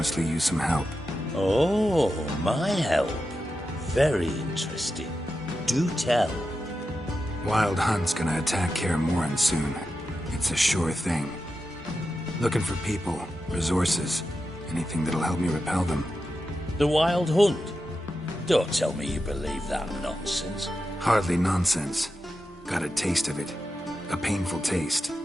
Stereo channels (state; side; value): normal; both; correlation 0.90